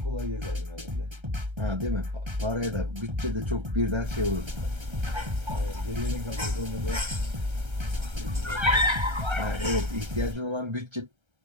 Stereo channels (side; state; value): left; late; 1.3 ms